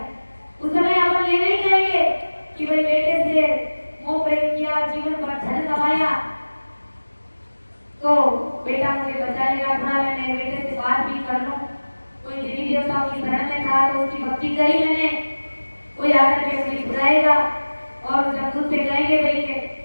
उस समय अपन ये नहीं कहेंगे कि भाई बेटे से मोह प्रेम किया, जीवन भर धन कमाया तो बेटा मुझे बचा लेगा, थोड़ा मैं मेरे बेटे से बात भी कर लूं, कोई देवी देवताओं की शरण में था तो उसकी भक्ति करी मैंने, कोई आकर के मुझे बुलाएगा और जब तुझसे कहेंगे भाई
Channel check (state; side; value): inverted; both; correlation -1.00